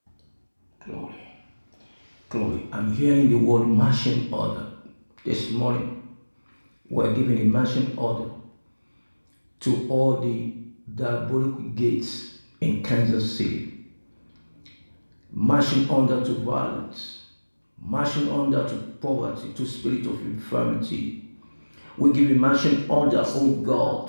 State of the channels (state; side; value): inverted; both; correlation -1.00